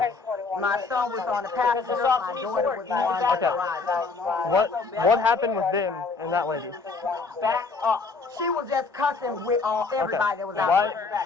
My son was on the passenger. My daughter was on the Okay. garage. What happened with them and that lady? Back up. She was just cussing with everybody that was out there.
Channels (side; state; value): right; quieter; 4.3 dB